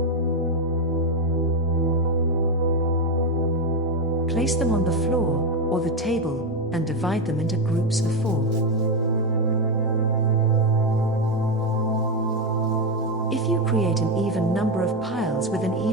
Place them on the floor or the table and divide them into groups of 4. If you create an even number of piles with an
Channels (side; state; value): both; normal; correlation 0.08